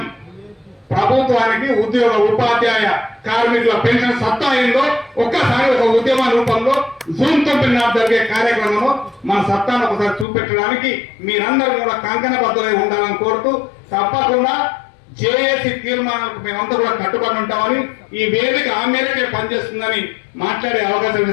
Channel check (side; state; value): right; drops out; at 10.2 s